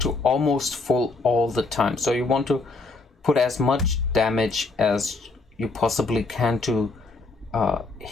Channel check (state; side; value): quieter; right; 3.5 dB